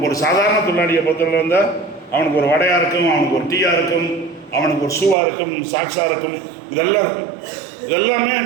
ஒரு சாதாரண தொழிலாளியை பொறுத்தவரை வந்தால் அவனுக்கு ஒரு வடையாக இருக்கும், அவனுக்கு ஒரு டீயாக இருக்கும், அவனுக்கு ஒரு ஷூவாக இருக்கும், சாக்ஸாக இருக்கும், இதெல்லாம் இருக்கும். இதெல்லாமே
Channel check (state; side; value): drops out; left; at 5.2 s